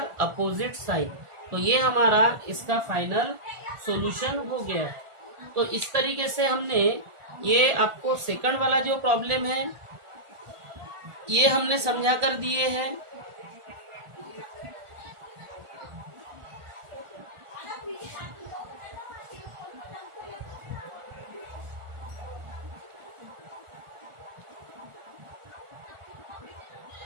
opposite sign. तो ये हमारा इसका फाइनल सॉल्यूशन हो गया है। तो इस तरीके से हमने ये आपको सेकंड वाला जो प्रॉब्लम है ये हमने समझा कर दिए हैं।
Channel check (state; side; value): late; left; 1.4 ms